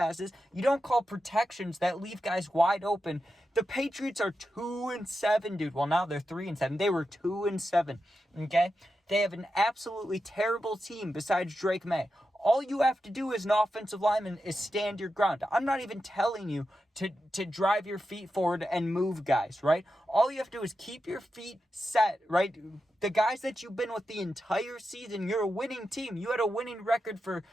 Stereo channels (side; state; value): both; normal; correlation 0.89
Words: You don't call protections that leave guys wide open. The Patriots are 2-7, dude. Well, now they're 3-7. They were 2-7, okay? They have an absolutely terrible team besides Drake May. All you have to do as an offensive lineman is stand your ground. I'm not even telling you to drive your feet forward and move guys, right? All you have to do is keep your feet set, right? The guys that you've been with the entire season, you're a winning team. You had a winning record for